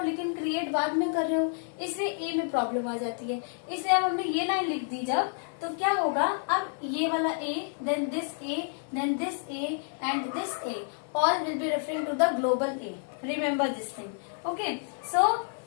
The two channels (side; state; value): right; silent; 58 dB below the other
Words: लेकिन क्रिएट बाद में कर रहे हो, इसलिए a में प्रॉब्लम आ जाती है। इसलिए अब हमने ये लाइन लिख दी जब, तो क्या होगा, अब ये वाला a, then this a, then this a and this a, all will be referring to the global A. Remember this thing, okay. So